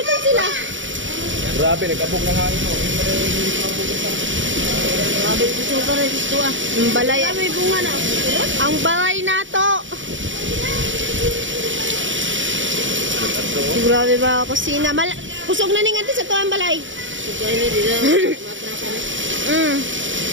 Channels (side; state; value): left; late; 0.56 ms